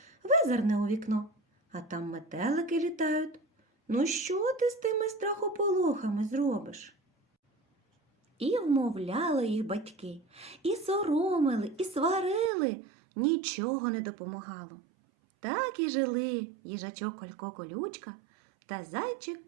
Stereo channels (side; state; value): left; drops out; at 12.5 s